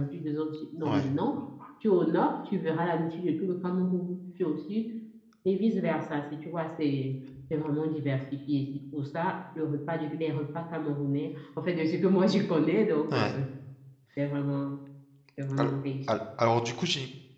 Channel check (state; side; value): identical; both; correlation 1.00